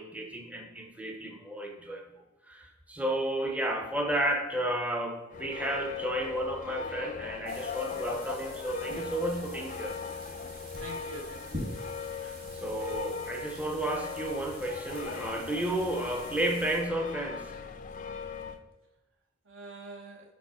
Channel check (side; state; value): both; normal; correlation 0.43